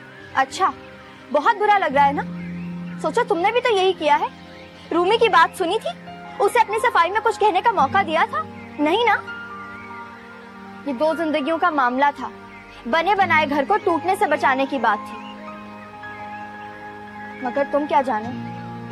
अच्छा, बहुत बुरा लग रहा है ना? सोचो तुमने भी तो यही किया है। रूमी की बात सुनी थी, उसे अपनी सफाई में कुछ कहने का मौका दिया था? नहीं ना। ये दो जिंदगियों का मामला था, बने बनाए घर को टूटने से बचाने की बात थी। मगर तुम क्या जानो,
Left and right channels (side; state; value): both; identical; correlation 1.00